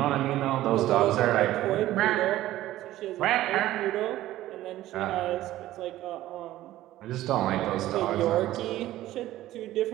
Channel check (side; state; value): left; quieter; 14.9 dB